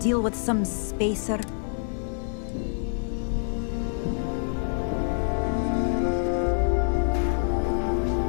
with some spacer.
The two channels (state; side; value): silent; right; digital silence